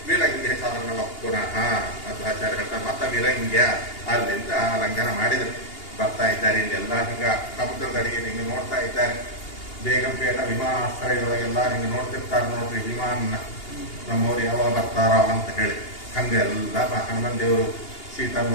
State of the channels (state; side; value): late; right; 2.8 ms